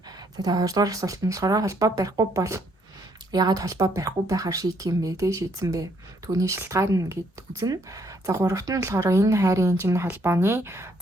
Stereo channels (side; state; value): both; normal; correlation 0.69